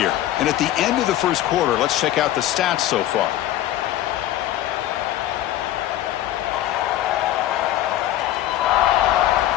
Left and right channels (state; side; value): quieter; right; 13.4 dB